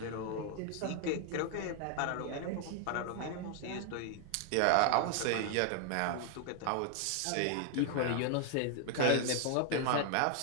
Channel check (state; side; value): different; both; correlation 0.00